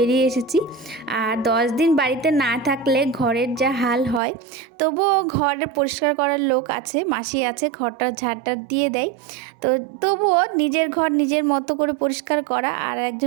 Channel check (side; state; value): left; drops out; at 4.2 s